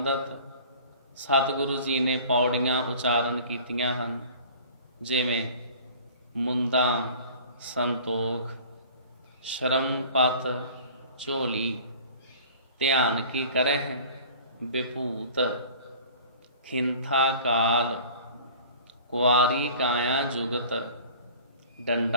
ਸਤਿਗੁਰੂ ਜੀ ਨੇ ਪੌੜੀਆਂ ਉਚਾਰਨ ਕੀਤੀਆਂ ਹਨ, ਜਿਵੇਂ ਮੁੰਦਾ ਸੰਤੋਖ, ਸ਼ਰਮ ਪਤ ਝੋਲੀ, ਧਿਆਨ ਕੀ ਕਰਹਿ ਵਿਭੂਤ, ਖਿੰਥਾ ਕਾਲ, ਕੁਆਰੀ ਕਾਇਆ ਜੁਗਤ,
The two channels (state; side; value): inverted; both; correlation -0.45